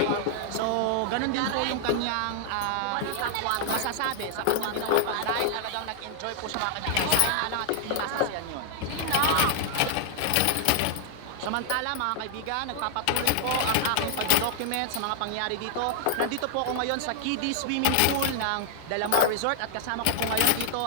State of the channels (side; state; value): both; different; correlation -0.01